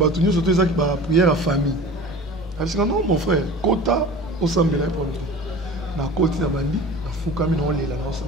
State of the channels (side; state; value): both; normal; correlation 0.38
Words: surtout qui prière à famille. Elle dit non, mon frère, Kota, au Sambela pour nous. Dans Koti, dans Bandi, dans Foukami, dans Léla, dans